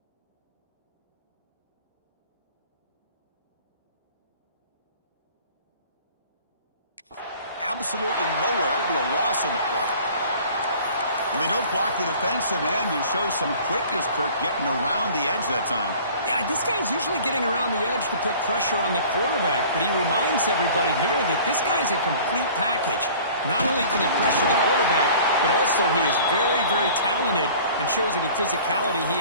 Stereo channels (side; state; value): both; inverted; correlation -0.47